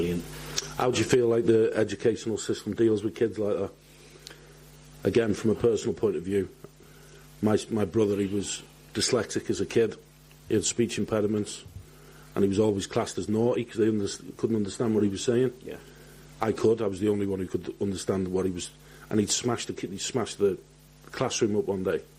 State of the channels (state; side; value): identical; both; correlation 1.00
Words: How do you feel like the educational system deals with kids like that? Again, from a personal point of view, my brother, he was dyslexic as a kid. He had speech impediments, and he was always classed as naughty because they couldn't understand what he was saying. I could. I was the only one who could understand what he was. And he'd smashed the classroom up one day.